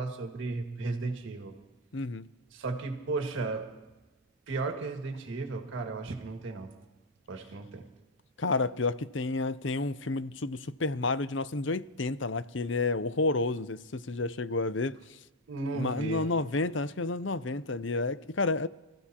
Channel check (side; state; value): both; normal; correlation 0.03